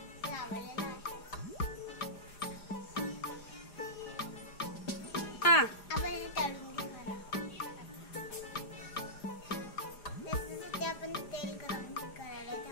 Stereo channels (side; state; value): right; late; 4.9 ms